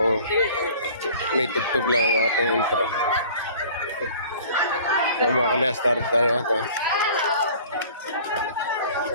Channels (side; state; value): both; inverted; correlation -0.47